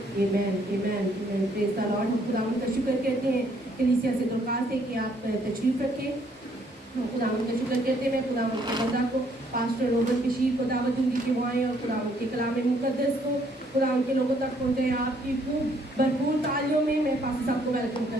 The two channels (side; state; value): both; normal; correlation 0.67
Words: amen amen amen. Praise the Lord. हम खुदावन का शुक्र कहते हैं कलीसिया से दरख्वास्त है कि आप तशरीफ रखें। हम खुदावन का शुक्र करते हैं। खुदावन के बंदा को पास्टर रोबन बशीर को दावत दूंगी कि वो आए और खुदावन के कलाम मुकद्दस को खुदावन के लोगों तक पहुँचे। आपकी खूब भरपूर तालियों में मैं पास्टर साहब को वेलकम